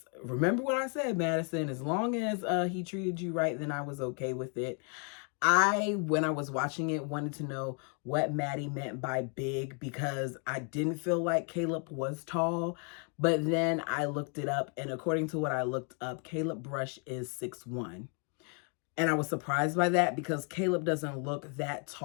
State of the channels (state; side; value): quieter; right; 39.3 dB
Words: remember what I said, Madison, as long as he treated you right, then I was okay with it. When I was watching it, wanted to know what Maddie meant by big, because I didn't feel like Caleb was tall. But then I looked it up, and according to what I looked up, Caleb Brush is 6'1". And I was surprised by that, because Caleb doesn't look that